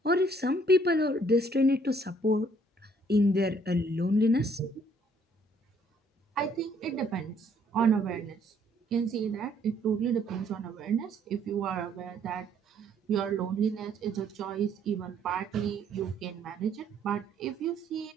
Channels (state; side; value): normal; both; correlation 0.64